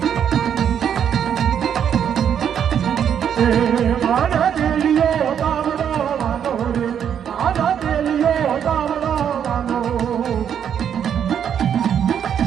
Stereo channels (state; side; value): quieter; left; 8.6 dB